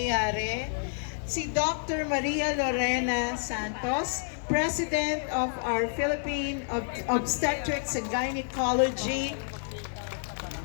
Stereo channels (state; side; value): silent; right; digital silence